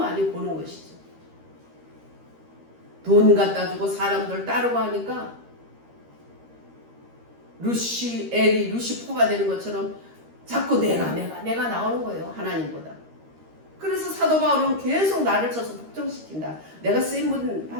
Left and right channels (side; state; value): left; late; 13 ms